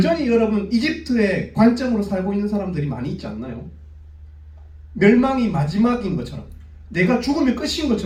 여러분, 이집트의 관점으로 살고 있는 사람들이 많이 있지 않나요? 멸망이 마지막인 것처럼, 내가 죽으면 끝인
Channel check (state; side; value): identical; both; correlation 1.00